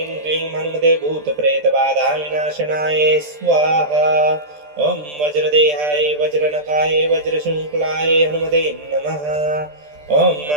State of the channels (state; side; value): late; left; 13 ms